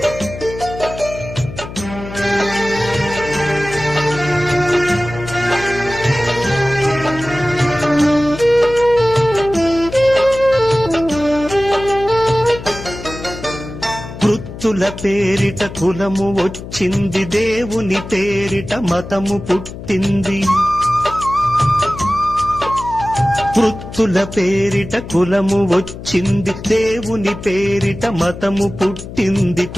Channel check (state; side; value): noise; left; hum, 12 dB below the sound